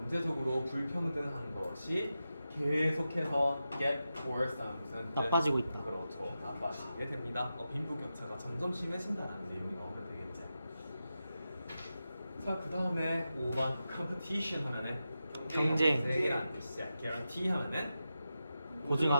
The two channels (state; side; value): inverted; both; correlation -0.91